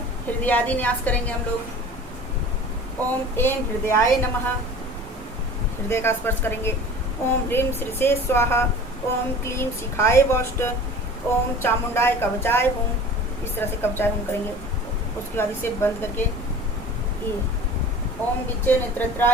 हृदयादि न्यास करेंगे हम लोग। ओम एम हृदयाय नमः, हृदय का स्पर्श करेंगे। ओम ह्रीम श्रीसे स्वाहा, ओम क्लीम शिखाय वौष्ट, ओम चामुंडाय कवचाय हुम, इस तरह से कवचाय हुम करेंगे। उसके बाद इसे बंद करके ये ओम विच्चे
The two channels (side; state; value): both; normal; correlation 0.41